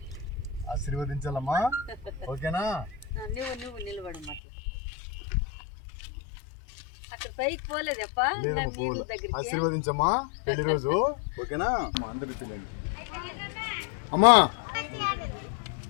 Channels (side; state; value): right; drops out; at 4.4 s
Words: ఆశీర్వదించాలమ్మా. ఓకేనా? నువ్వు నిలబడమ్మా. ఆశీర్వదించమ్మా పెళ్లి రోజు. ఓకేనా? అందరూ చూడండి అమ్మా.